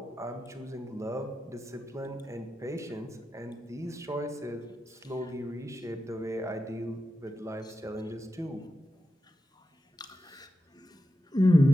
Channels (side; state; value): both; normal; correlation 0.90